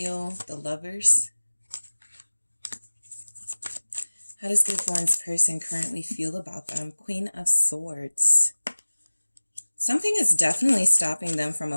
The Lovers. How does Group One's person currently feel about them? Queen of Swords. Something is definitely stopping them from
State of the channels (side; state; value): both; inverted; correlation -1.00